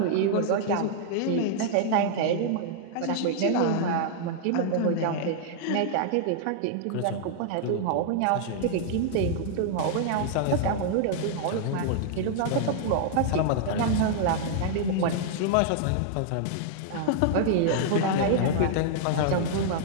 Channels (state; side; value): different; both; correlation -0.01